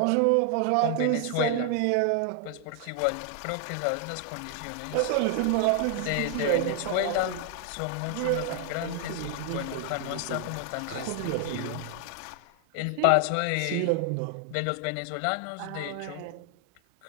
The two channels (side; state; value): both; different; correlation 0.00